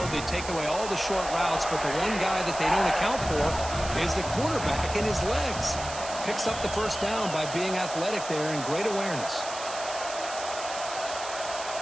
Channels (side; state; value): right; noise; hiss, 10 dB below the sound